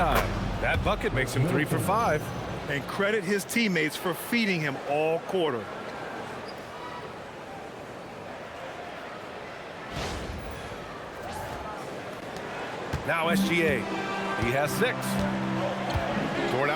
That bucket makes him 3 for 5. And credit his teammates for feeding him all quarter. Now SGA. He has 6. Toward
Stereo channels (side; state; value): both; identical; correlation 1.00